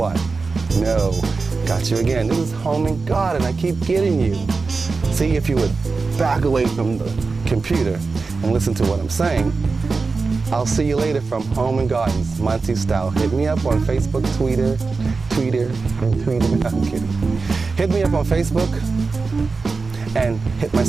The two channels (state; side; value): quieter; left; 4.2 dB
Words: No, got you again. This is home and garden. I keep getting you. See, if you would back away from the computer and listen to what I'm saying. I'll see you later from Home and Gardens, Monty style. Hit me up on Facebook, Twitter. I'm kidding. Hit me up on Facebook and hit my